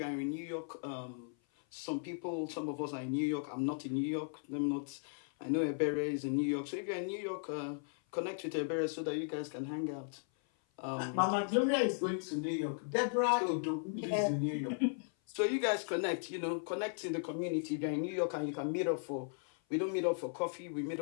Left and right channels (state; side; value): silent; right; 53 dB below the other